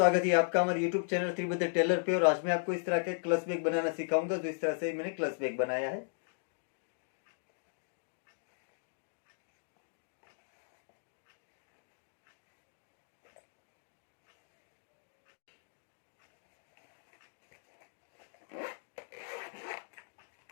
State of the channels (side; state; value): right; silent; digital silence